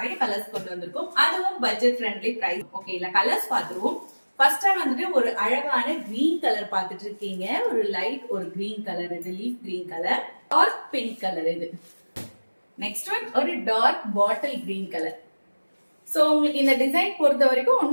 கலர்ஸ் கொண்டு வந்திருக்கோம். அதுவும் பட்ஜெட் ஃப்ரெண்ட்லி பிரைஸ். ஓகே, இல்ல கலர்ஸ் பாத்துருவோம். ஃபர்ஸ்டா வந்துட்டு ஒரு அழகான கிரீன் கலர் பாத்துட்டு இருக்கீங்க. ஒரு லைட் ஒரு கிரீன் கலர், இது leaf green colour. Dark pink colour இது. நெக்ஸ்ட் ஒன் ஒரு dark bottle green colour. So உங்களுக்கு இந்த டிசைன் பொறுத்த வரைக்கும்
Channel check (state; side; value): inverted; both; correlation -1.00